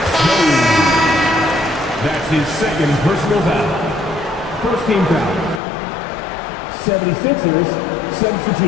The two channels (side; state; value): right; drops out; at 5.6 s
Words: That's his 2nd personal foul. 1st team foul. 76ers